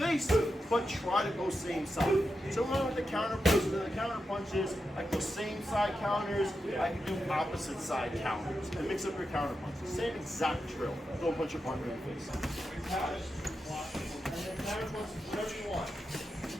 but try to go same side. So along with the counter punches and the counter punches, I can go same side counters, I can do opposite side counters, and mix up your counter punches. Same exact drill. Don't punch your partner in the face. Catch, and then counter punches, whatever you want.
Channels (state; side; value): normal; both; correlation 0.88